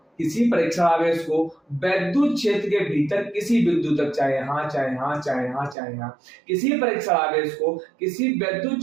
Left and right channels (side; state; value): left; drops out; at 5.8 s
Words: किसी परीक्षण आवेश को विद्युत क्षेत्र के भीतर किसी बिंदु तक, चाहे यहाँ, चाहे यहाँ, चाहे यहाँ, चाहे यहाँ, किसी परीक्षण आवेश को किसी विद्युत